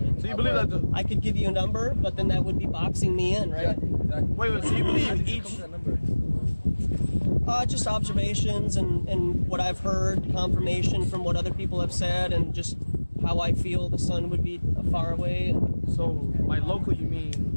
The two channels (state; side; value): inverted; both; correlation -1.00